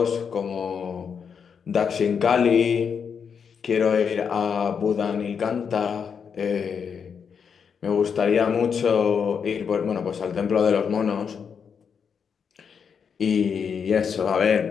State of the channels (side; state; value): right; quieter; 6.7 dB